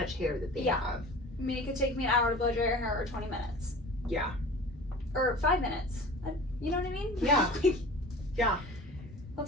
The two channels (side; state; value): both; normal; correlation 0.39